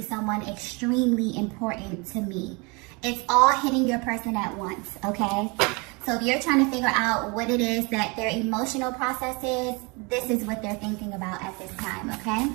someone extremely important to me. It's all hitting your person at once, okay? So if you're trying to figure out what it is that their emotional process is, this is what they're thinking about at this time, okay?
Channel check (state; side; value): quieter; left; 29.1 dB